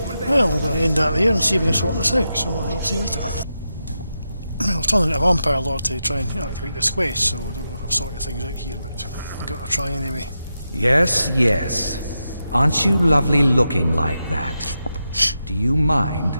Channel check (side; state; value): both; inverted; correlation -0.88